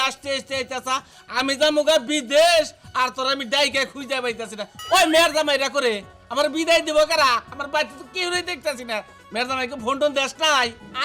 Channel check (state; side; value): identical; both; correlation 1.00